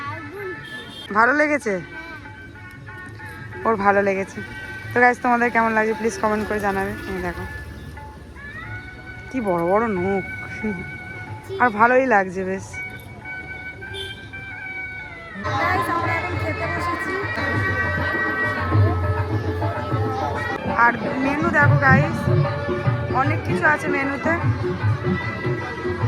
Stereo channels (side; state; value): both; identical; correlation 1.00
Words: ভালো লেগেছে, ওর ভালো লেগেছে। তো গাইস তোমাদের কেমন লাগছে প্লিজ কমেন্ট করে জানাবে। এই দেখো কি বড় বড় নখ, আর ভালোই লাগছে বেশ। আর মেনু দেখো গাইস, অনেক কিছু আছে মেনুতে।